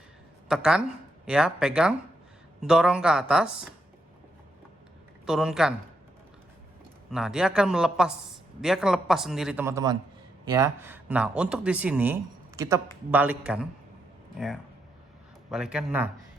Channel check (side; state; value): both; normal; correlation 0.80